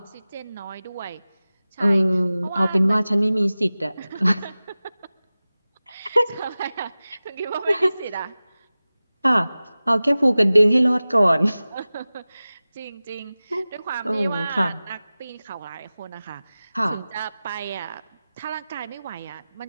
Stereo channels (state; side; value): inverted; both; correlation -0.97